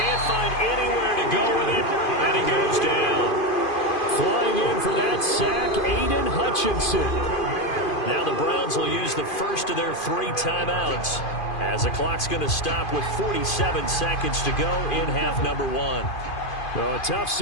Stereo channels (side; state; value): right; late; 2.5 ms